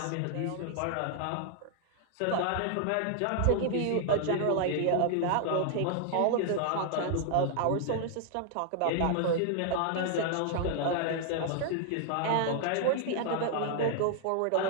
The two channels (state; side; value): different; both; correlation 0.00